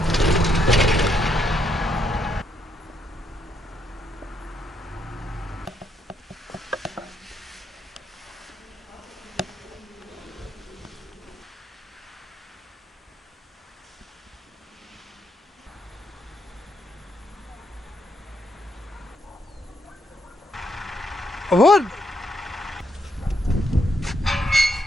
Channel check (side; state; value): both; normal; correlation 0.76